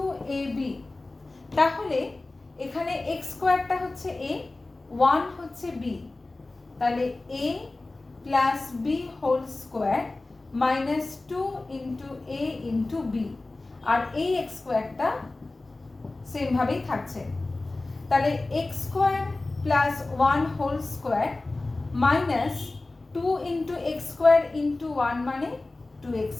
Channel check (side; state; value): right; quieter; 3.1 dB